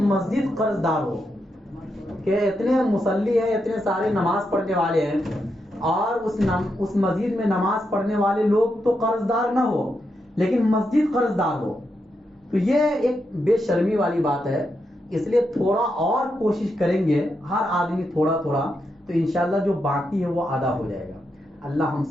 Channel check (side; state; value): both; normal; correlation 0.84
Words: مسجد قرض دار ہو، کہ اتنے مصلی ہیں، اتنے سارے نماز پڑھنے والے ہیں، اور اس مسجد میں نماز پڑھنے والے لوگ تو قرض دار نہ ہو لیکن مسجد قرض دار ہو، تو یہ ایک بے شرمی والی بات ہے۔ اس لیے تھوڑا اور کوشش کریں گے ہر آدمی تھوڑا تھوڑا، تو انشاءاللہ جو باقی ہے وہ ادا ہو جائے گا۔ اللہ ہم